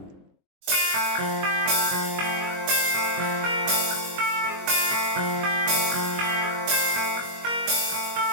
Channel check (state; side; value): late; left; 21 ms